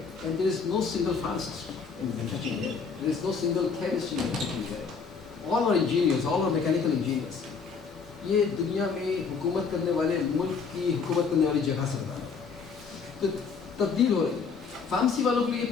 and there is no single pharmacist in manufacturing there. There is no single chemist in manufacturing there. All are engineers, all are mechanical engineers. یہ دنیا میں حکومت کرنے والے ملک کی حکومت کرنے والی جگہ سے بتا رہا ہے. تو تبدیل ہو رہی ہے. فارمیسی والوں کے لیے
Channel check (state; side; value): quieter; right; 5.5 dB